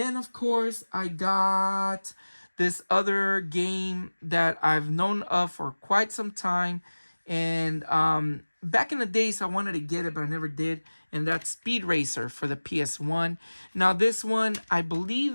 of course, I got this other game that I've known of for quite some time. And back in the days, I wanted to get it, but I never did. And that's Speed Racer for the PS1. Now, this one, I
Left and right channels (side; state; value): both; inverted; correlation -1.00